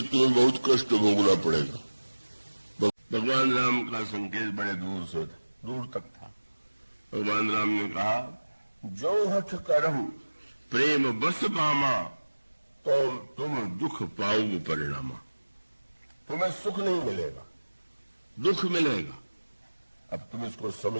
तुम्हें बहुत कष्ट भोगना पड़ेगा। भगवान राम का संकेत बड़े दूर तक था। भगवान राम ने कहा, जो हठ करहु प्रेम बस पामा, तो तुम दुख पाओगे परिणामा। तुम्हें सुख नहीं मिलेगा, दुख मिलेगा। अब तुम इसको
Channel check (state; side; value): inverted; both; correlation -1.00